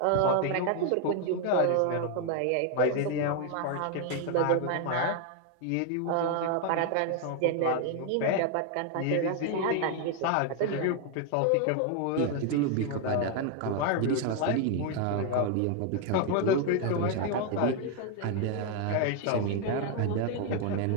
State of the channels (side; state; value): both; different; correlation 0.00